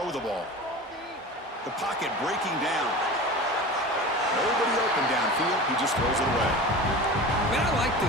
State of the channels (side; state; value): both; normal; correlation 0.33